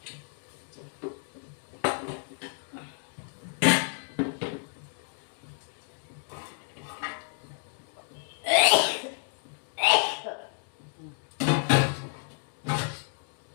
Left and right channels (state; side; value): silent; right; 57 dB below the other